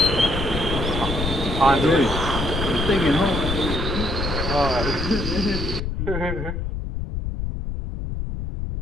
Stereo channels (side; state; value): left; noise; rumble, 3 dB below the sound